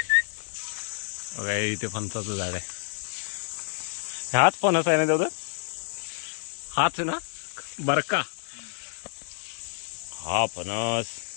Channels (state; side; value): silent; right; digital silence